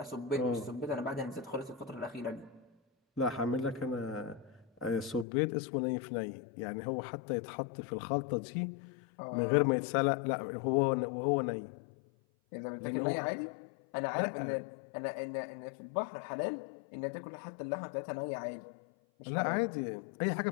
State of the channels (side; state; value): right; drops out; at 5.2 s